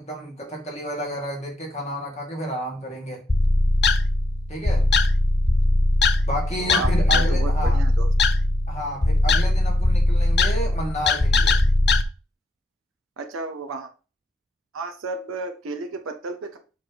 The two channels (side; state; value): both; normal; correlation 0.80